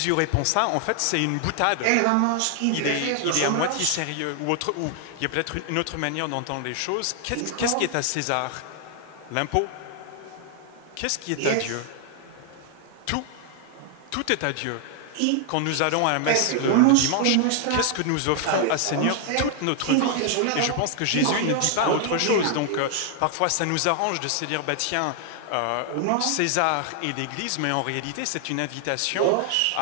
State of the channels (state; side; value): different; both; correlation 0.00